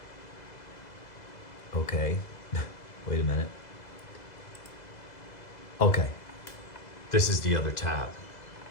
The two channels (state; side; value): late; right; 2.0 ms